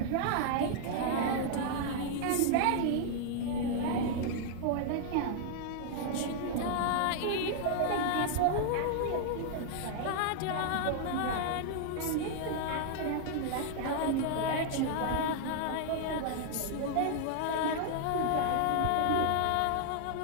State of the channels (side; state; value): both; different; correlation -0.01